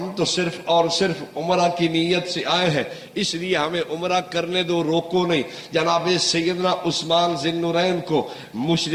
تو صرف اور صرف عمرہ کی نیت سے آئے ہیں، اس لیے ہمیں عمرہ کرنے دو، روکو نہیں۔ جناب سیدنا عثمان ذی النورین کو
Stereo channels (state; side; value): identical; both; correlation 1.00